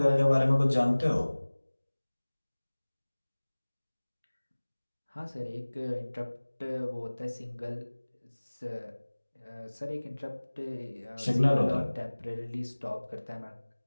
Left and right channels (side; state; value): both; inverted; correlation -1.00